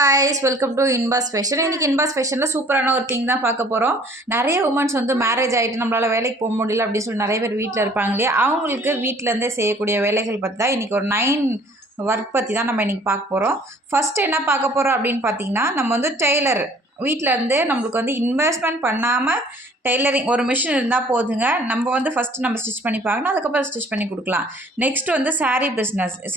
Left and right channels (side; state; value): both; normal; correlation 0.54